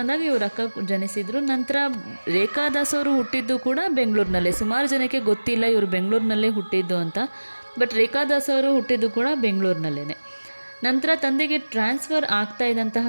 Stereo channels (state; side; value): inverted; both; correlation -1.00